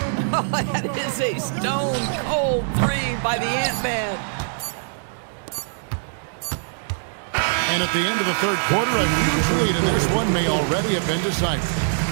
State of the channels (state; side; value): silent; left; digital silence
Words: Oh, that is a stone-cold 3 by the Ant-Man. And at the end of the third quarter, a huge lead, and this one may already have been decided.